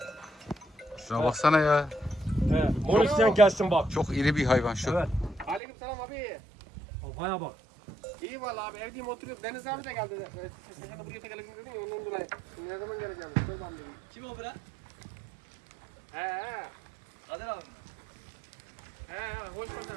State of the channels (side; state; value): left; drops out; at 5.6 s